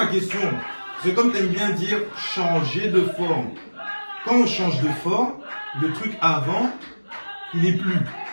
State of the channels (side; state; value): both; inverted; correlation -1.00